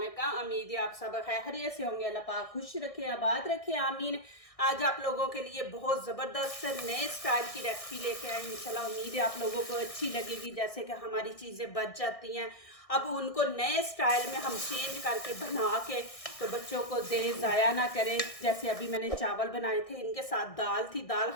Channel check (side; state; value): right; late; 1.6 ms